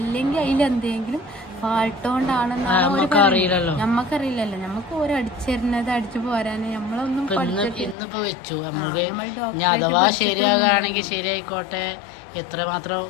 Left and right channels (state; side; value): drops out; right; at 8.0 s